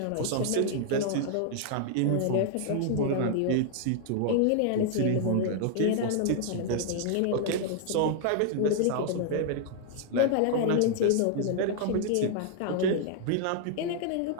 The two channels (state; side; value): different; both; correlation 0.00